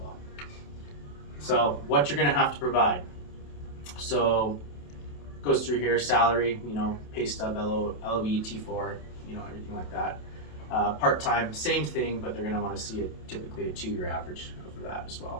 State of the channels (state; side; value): late; right; 27 ms